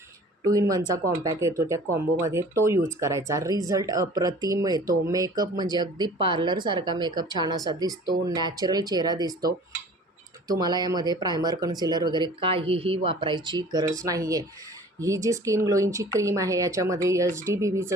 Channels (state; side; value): normal; both; correlation 0.46